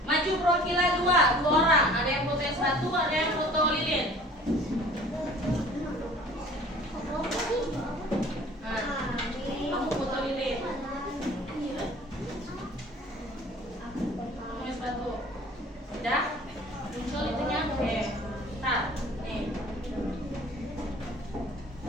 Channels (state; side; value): normal; both; correlation 0.48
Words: Maju perwakilan 2 orang. Ada yang foto es batu, ada yang foto lilin. Nah, kamu foto lilin. Es batu. Udah? Muncul itunya? Oke. Ntar. Nih.